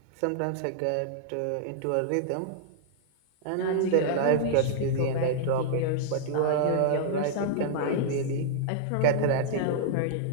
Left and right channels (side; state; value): both; different; correlation -0.01